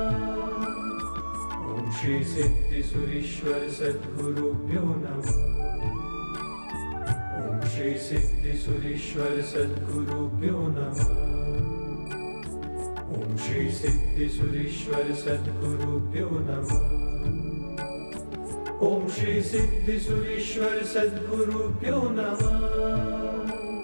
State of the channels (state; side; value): inverted; both; correlation -1.00